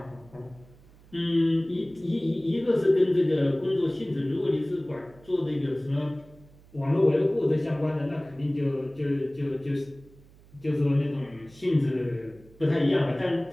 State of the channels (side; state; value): right; noise; hum, 25 dB below the sound